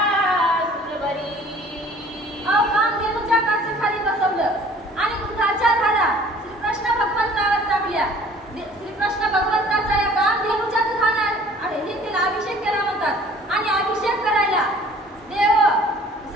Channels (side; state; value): both; normal; correlation 0.51